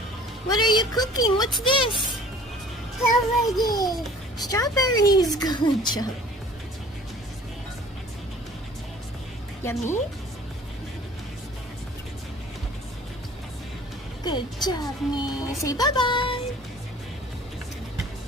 What are you cooking? What's this? Strawberries. Good job. Yummy? Good job, Mia. Say bye-bye.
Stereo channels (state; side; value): normal; both; correlation 0.49